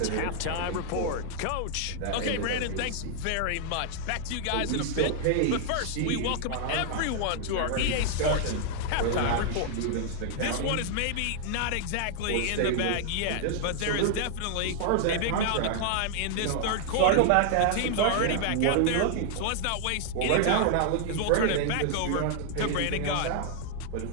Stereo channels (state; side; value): different; both; correlation 0.00